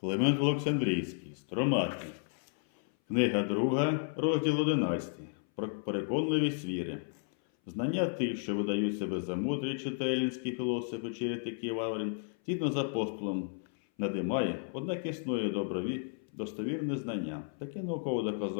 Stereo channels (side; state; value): right; silent; 56 dB below the other